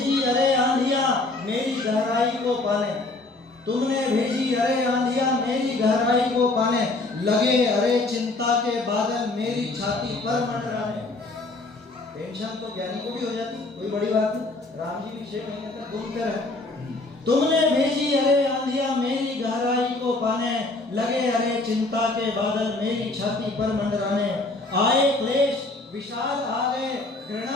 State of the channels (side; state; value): right; quieter; 3.1 dB